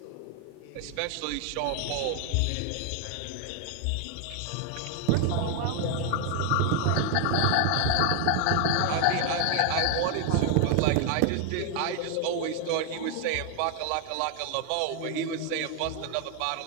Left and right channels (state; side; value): different; both; correlation 0.00